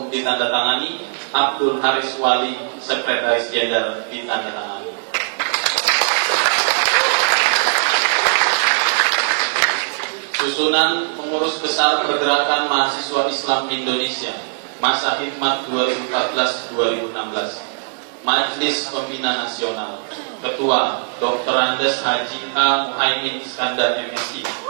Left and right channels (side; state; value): left; silent; 66 dB below the other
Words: ditandatangani, Abdul Haris Wali Sekretaris Jenderal ditandatangani. Susunan Pengurus Besar Pergerakan Mahasiswa Islam Indonesia Masa Hikmat 2014-2016. Majelis Pembina Nasional. Ketua Dr. Andes Haji A. Muhaimin Iskandar MSI.